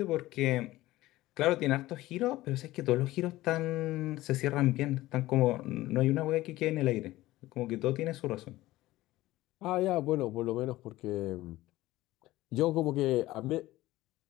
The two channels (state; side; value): quieter; right; 17.1 dB